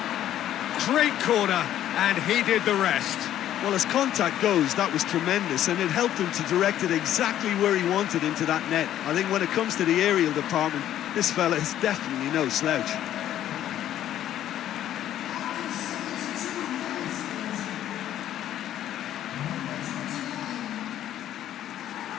Great corner, and he did the rest. Well, as contact goes, that was tremendous, and it helped him to direct it exactly where he wanted into that net. I think when it comes to the aerial department, this fella is definitely no slouch.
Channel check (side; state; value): right; quieter; 11.7 dB